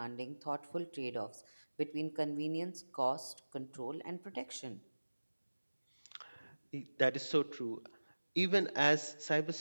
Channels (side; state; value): both; inverted; correlation -1.00